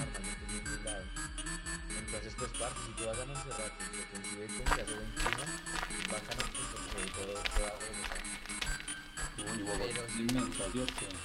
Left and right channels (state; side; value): identical; both; correlation 1.00